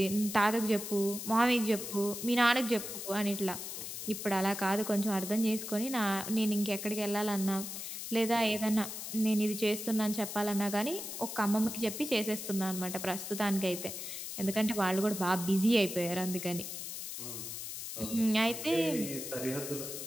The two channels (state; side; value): noise; left; hiss, 7 dB below the sound